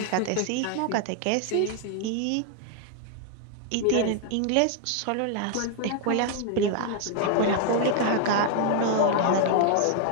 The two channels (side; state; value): both; different; correlation 0.00